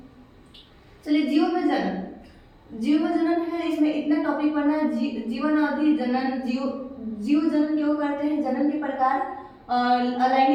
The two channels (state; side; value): identical; both; correlation 1.00